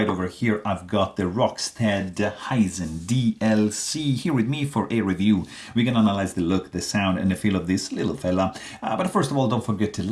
over here I've got the Rockstead Hizen DLC here with me for a review. We're gonna analyze the look, the sound and the feel of this little fella. But first of all, don't forget to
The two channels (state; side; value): identical; both; correlation 1.00